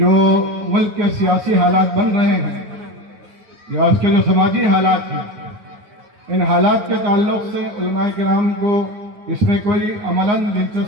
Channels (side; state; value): left; late; 9.3 ms